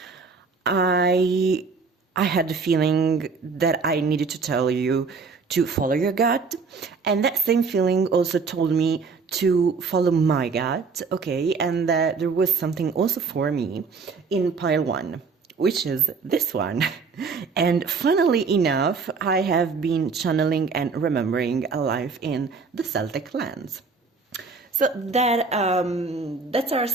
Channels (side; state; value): left; quieter; 4.8 dB